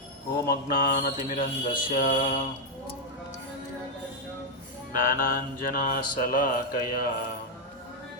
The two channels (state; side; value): normal; both; correlation -0.02